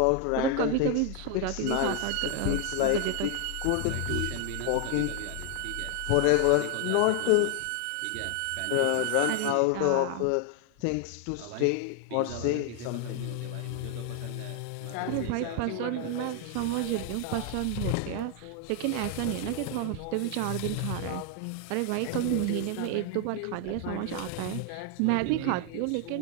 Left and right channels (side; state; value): both; different; correlation 0.00